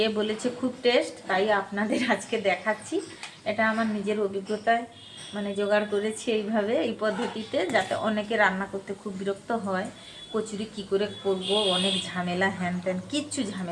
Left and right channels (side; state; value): both; identical; correlation 1.00